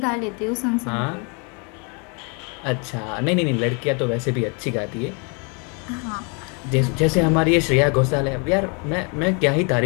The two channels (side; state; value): right; quieter; 34.6 dB